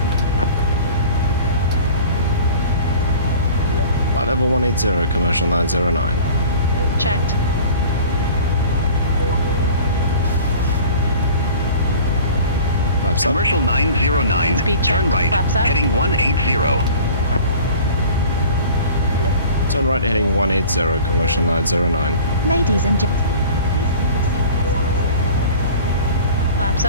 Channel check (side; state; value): both; inverted; correlation -0.43